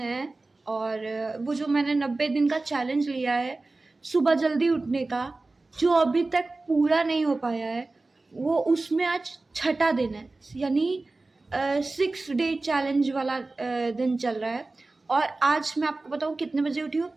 और वो जो मैंने 90 दिन का चैलेंज लिया है सुबह जल्दी उठने का, जो अभी तक पूरा नहीं हो पाया है, वो उसमें आज छठा दिन है। यानी 6 डे चैलेंज वाला दिन चल रहा है। और आज मैं आपको बताऊं कितने बजे उठी हूँ।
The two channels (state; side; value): quieter; left; 3.3 dB